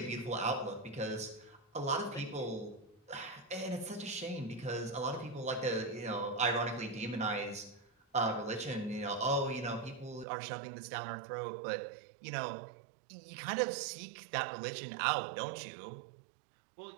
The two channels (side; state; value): left; drops out; at 10.2 s